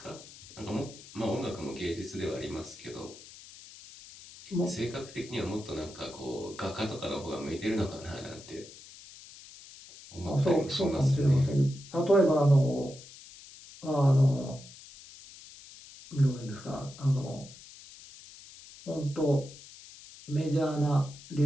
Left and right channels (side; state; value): left; noise; hiss, 18 dB below the sound